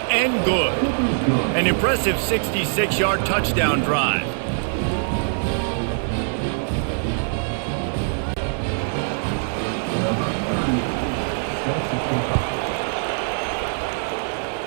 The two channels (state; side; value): silent; left; 60 dB below the other